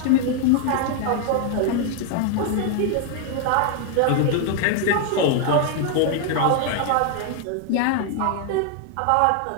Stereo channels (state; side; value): different; both; correlation 0.00